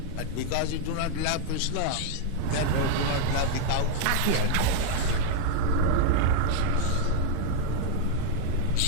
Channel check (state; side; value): different; both; correlation 0.00